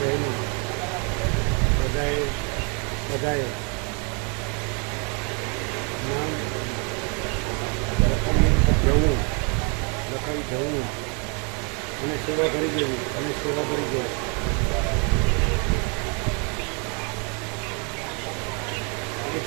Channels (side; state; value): left; quieter; 34.9 dB